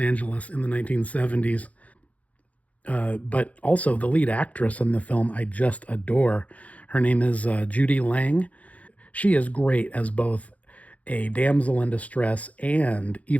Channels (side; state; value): right; late; 0.067 ms